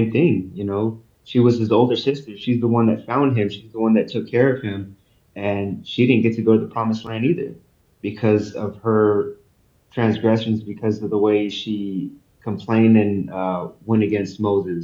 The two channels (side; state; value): both; identical; correlation 1.00